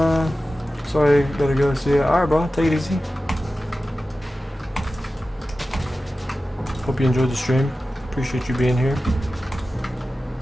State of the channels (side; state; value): both; normal; correlation 0.94